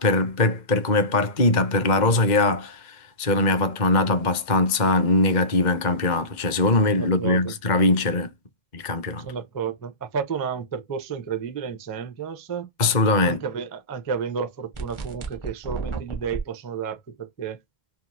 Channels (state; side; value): late; right; 2.1 ms